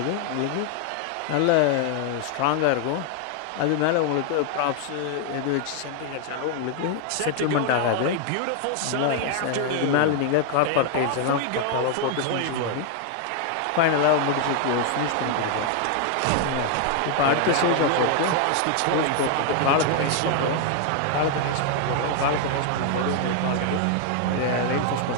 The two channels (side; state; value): both; different; correlation 0.00